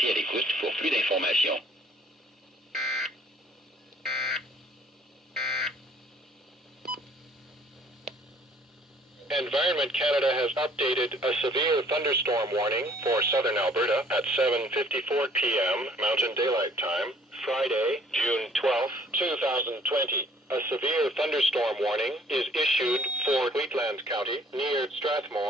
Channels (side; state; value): both; normal; correlation 0.58